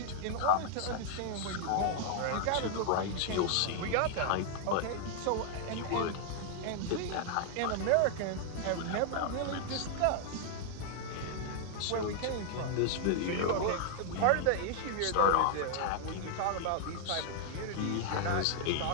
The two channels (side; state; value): both; different; correlation 0.00